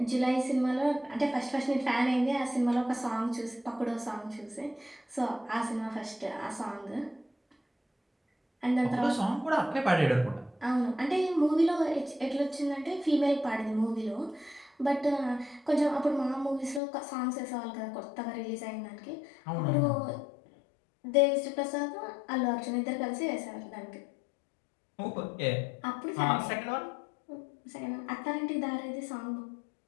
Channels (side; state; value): right; drops out; at 16.8 s